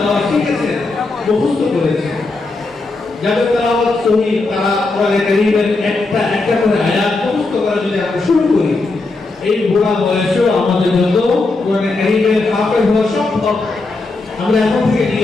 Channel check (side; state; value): right; quieter; 3.4 dB